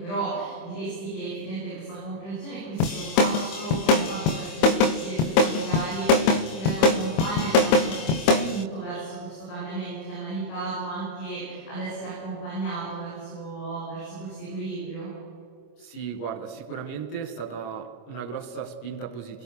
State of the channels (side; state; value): right; late; 25 ms